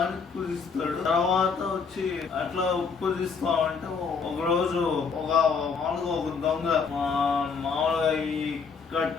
పూజిస్తాడు. తర్వాత వచ్చి అట్లా పూజిస్తా అంటే ఒక రోజు మామూలుగా ఒక దొంగ మామూలుగా ఈ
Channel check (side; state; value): right; quieter; 5.4 dB